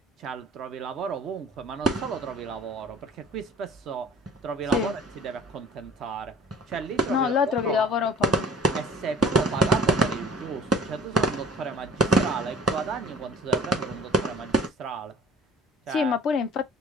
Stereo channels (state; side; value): normal; both; correlation 0.47